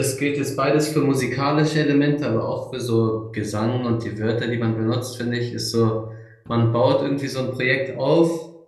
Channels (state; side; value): identical; both; correlation 1.00